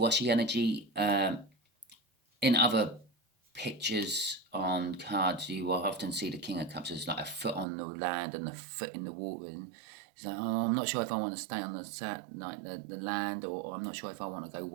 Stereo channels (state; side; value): drops out; left; at 7.7 s